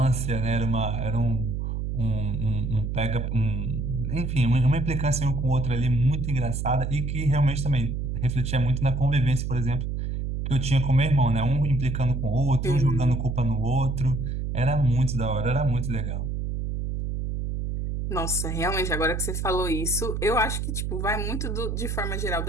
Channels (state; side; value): noise; right; hum, 2 dB below the sound